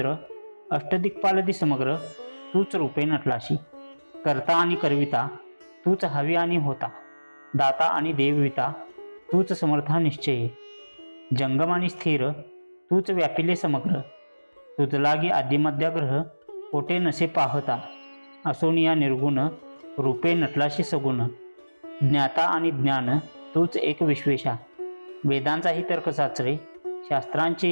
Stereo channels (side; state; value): both; inverted; correlation -1.00